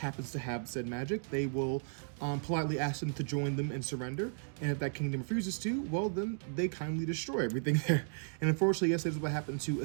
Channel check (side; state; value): left; silent; digital silence